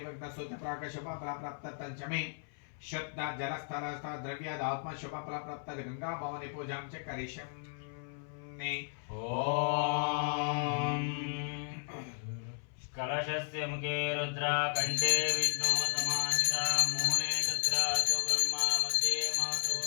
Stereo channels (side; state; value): right; silent; 55 dB below the other